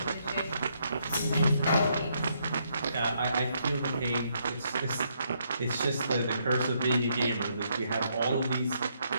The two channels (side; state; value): both; inverted; correlation -0.74